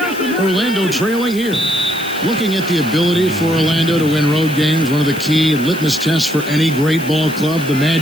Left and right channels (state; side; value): noise; left; hiss, 16 dB below the sound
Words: Orlando trailing here. Looking at the ability for Orlando to win road games, one of the key litmus tests for any great ball club. The